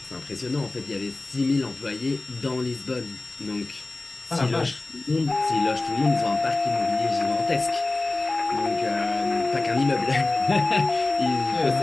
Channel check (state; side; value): quieter; right; 3.2 dB